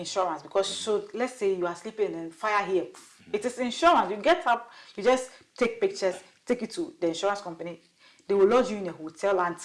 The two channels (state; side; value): identical; both; correlation 1.00